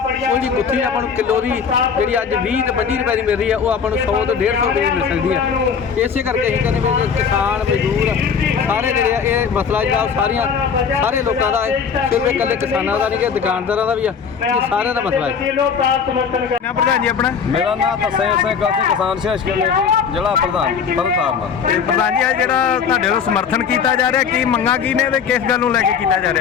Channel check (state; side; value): quieter; right; 6.6 dB